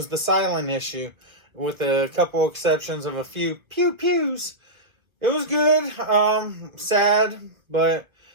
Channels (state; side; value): late; left; 1.5 ms